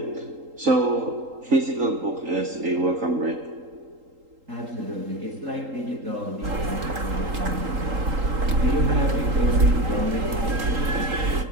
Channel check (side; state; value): left; late; 3.8 ms